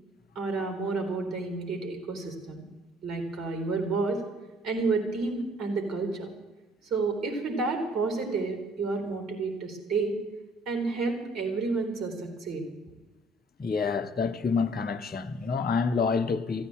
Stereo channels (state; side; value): normal; both; correlation 0.58